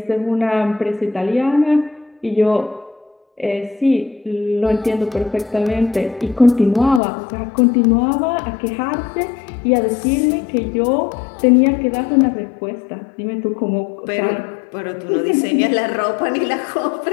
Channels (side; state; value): right; drops out; at 7.0 s